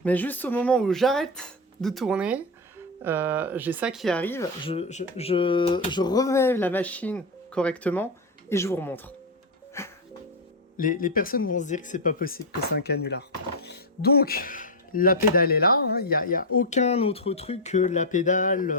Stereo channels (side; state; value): both; normal; correlation 0.06